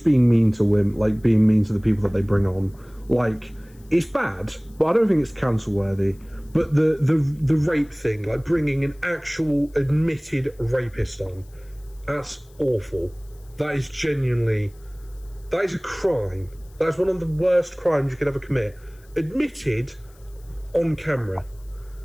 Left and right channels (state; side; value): noise; left; hiss, 30 dB below the sound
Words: being mean to women, like being mean to the people that they bring on, like it's bad, but I don't think it's cancel worthy. But the rape thing, like bringing an actual admitted rapist on, that's awful. That is a crime. That's one of the worst crimes you could ever commit. Admitted on camera.